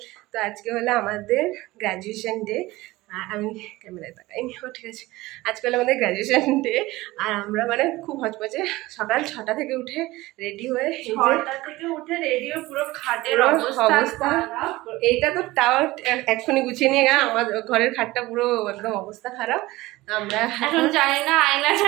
তো আজকে হলো আমাদের গ্র্যাজুয়েশন ডে। আমি ক্যামেরায় তাকাইনি, ঠিক আছে। আজকে হলো আমাদের গ্র্যাজুয়েশন ডে, আর আমরা মানে খুব হচপচে সকাল 6টা থেকে উঠে রেডি হয়ে, 6টা থেকে উঠে রেডি হয়ে পুরো খাটের অবস্থা। এইটা তো তাও এক্ষুনি গুছিয়ে নিয়ে গেলাম, আমার ঘরের খাটটা পুরো একদম অবস্থা খারাপ। আমরা এখন জানি না আয়না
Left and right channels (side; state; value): left; quieter; 19.2 dB